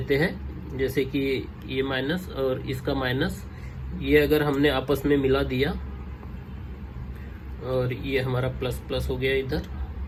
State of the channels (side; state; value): both; identical; correlation 1.00